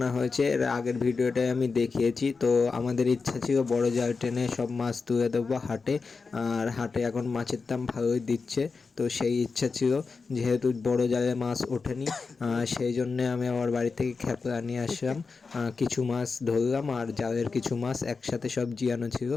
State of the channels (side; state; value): right; quieter; 4.6 dB